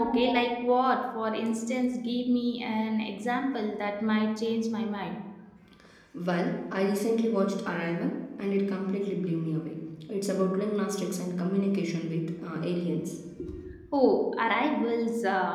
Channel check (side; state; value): both; identical; correlation 1.00